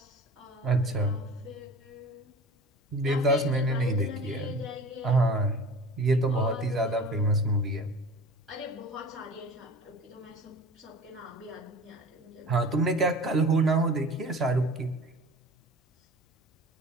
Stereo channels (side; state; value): both; normal; correlation 0.40